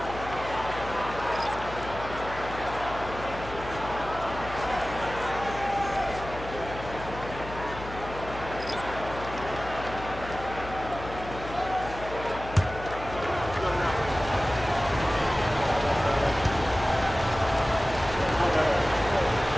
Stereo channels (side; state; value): left; noise; hum, 12 dB below the sound